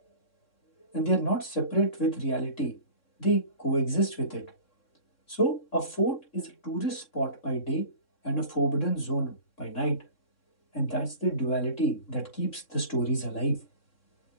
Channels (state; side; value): late; right; 3.6 ms